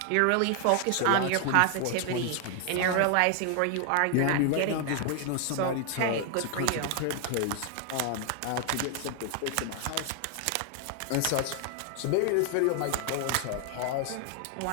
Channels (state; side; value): different; both; correlation 0.00